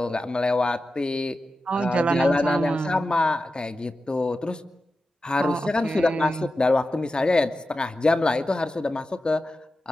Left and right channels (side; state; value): both; normal; correlation 0.92